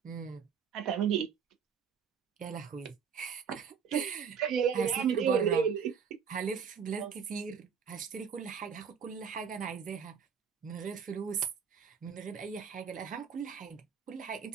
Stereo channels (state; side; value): quieter; left; 6.8 dB